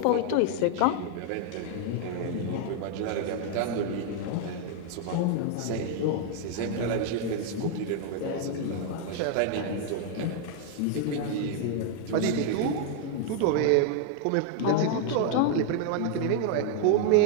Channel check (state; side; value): different; both; correlation 0.00